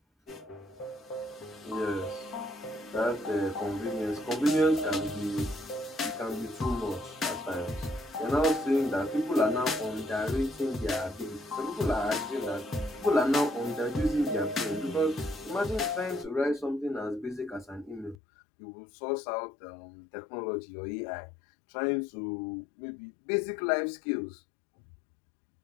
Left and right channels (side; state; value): right; drops out; at 18.2 s